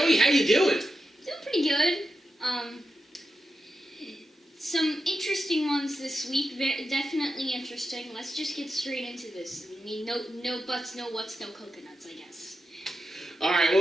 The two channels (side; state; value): both; normal; correlation 0.89